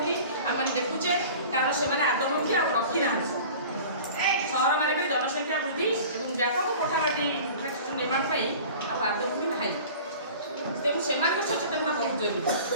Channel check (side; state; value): both; inverted; correlation -0.41